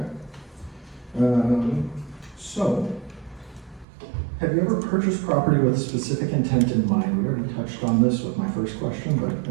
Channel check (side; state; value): left; drops out; at 3.9 s